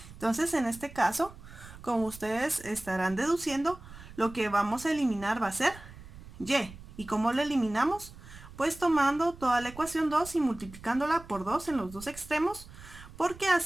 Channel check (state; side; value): noise; right; rumble, 17 dB below the sound